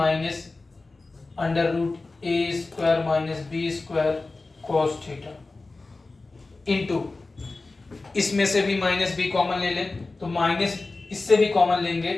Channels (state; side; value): quieter; right; 3.5 dB